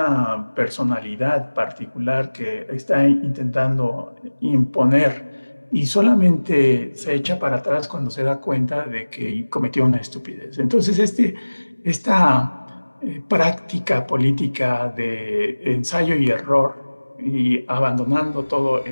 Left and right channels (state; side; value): inverted; both; correlation -1.00